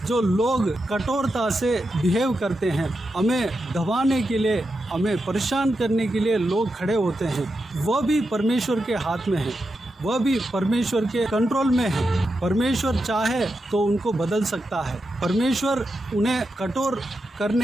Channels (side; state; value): both; normal; correlation 0.88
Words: जो लोग कठोरता से बिहेव करते हैं, हमें दबाने के लिए, हमें परेशान करने के लिए लोग खड़े होते हैं, वह भी परमेश्वर के हाथ में है, वह भी परमेश्वर के कंट्रोल में है। परमेश्वर चाहे तो उनको बदल सकता है। परमेश्वर उन्हें कठोर